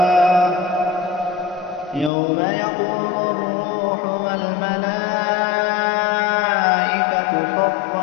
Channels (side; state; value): right; drops out; at 2.1 s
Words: يوم يقوم الروح والملائكة